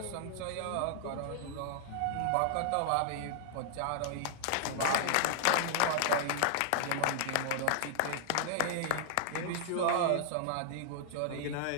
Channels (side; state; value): both; different; correlation -0.01